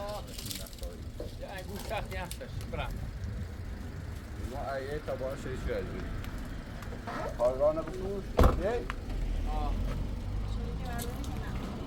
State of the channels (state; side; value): identical; both; correlation 1.00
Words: یه انگوش سخت یخش برم ما ایه تبایی شدی شدی کارگاه نبود یه